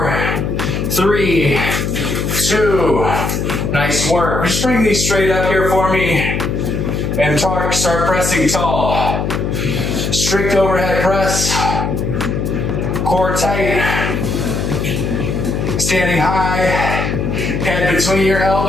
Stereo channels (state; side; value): noise; left; hum, 1 dB below the sound